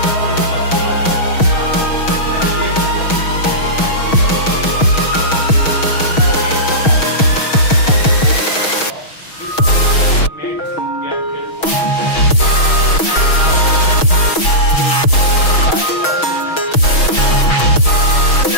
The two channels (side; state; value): right; late; 6.3 ms